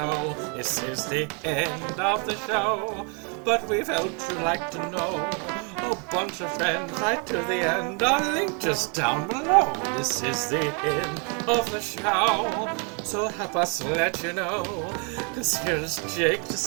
This is the end of the show. But we felt you'd like to know. A bunch of friends right to the end. Our link just down below. This is the end of the show. So help us let you know. 'Cause here's Jake to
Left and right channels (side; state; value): left; quieter; 36.6 dB